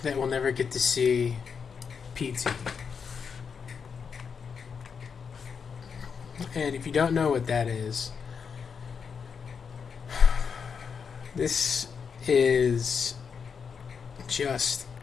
that we'll never get to see PT. And if you don't know what that is, this is just,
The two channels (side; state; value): right; quieter; 6.3 dB